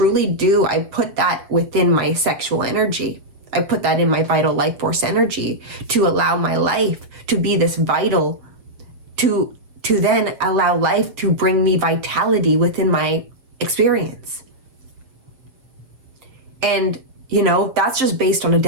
do. I put that within my sexual energy. I put that in my vital life force energy to allow my life to be this vital, to then allow life to bring me vitality within my experience. And, that's just based on a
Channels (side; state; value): left; late; 7.7 ms